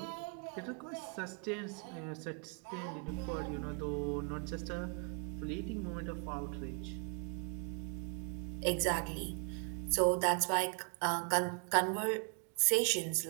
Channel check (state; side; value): quieter; left; 39.0 dB